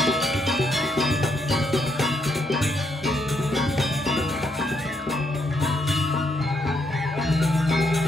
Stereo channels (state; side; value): normal; both; correlation 0.76